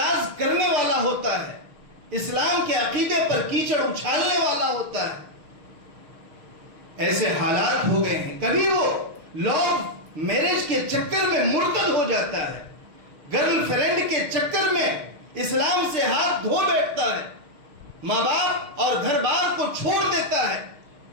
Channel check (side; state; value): left; late; 6.5 ms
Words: کرنے والا ہوتا ہے، اسلام کے عقیدے پر کیچڑ اچھالنے والا ہوتا ہے. ایسے حالات ہو گئے ہیں. کبھی وہ لوگ میرج کے چکر میں مرتد ہو جاتا ہے، گرل فرینڈ کے چکر میں اسلام سے ہاتھ دھو بیٹھتا ہے، ماں باپ اور گھر بار کو چھوڑ دیتا ہے.